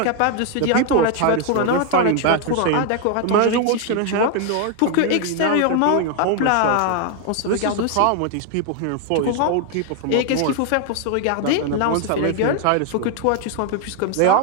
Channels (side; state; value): both; different; correlation 0.01